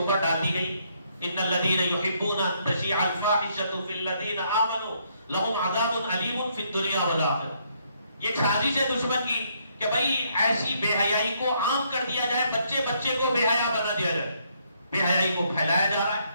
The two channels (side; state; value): both; inverted; correlation -0.71